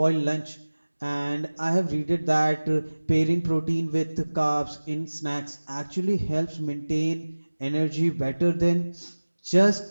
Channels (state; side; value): inverted; both; correlation -1.00